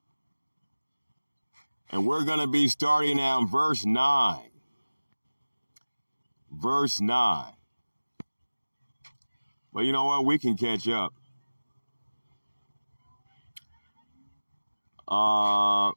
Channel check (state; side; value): inverted; both; correlation -1.00